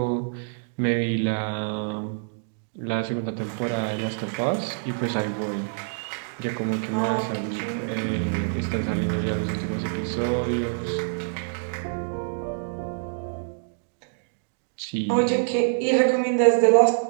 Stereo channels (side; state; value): left; silent; digital silence